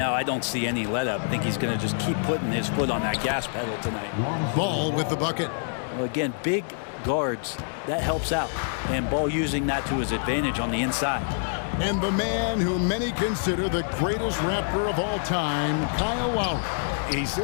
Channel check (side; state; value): right; silent; digital silence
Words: I don't see any let up. I think he's going to just keep putting his foot on that gas pedal tonight. Ball with the bucket. Well, again, big guards, that helps out. And Ball using that to his advantage on the inside. And the man who many consider the greatest Raptor of all time, Kyle Lowry. He